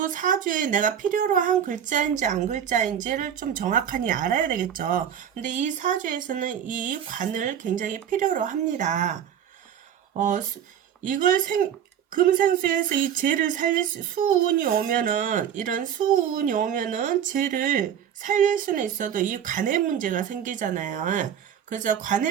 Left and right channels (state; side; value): quieter; left; 9.1 dB